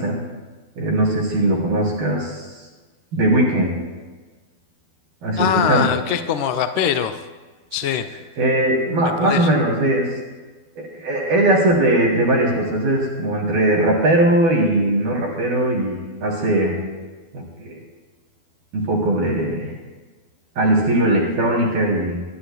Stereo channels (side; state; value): left; late; 12 ms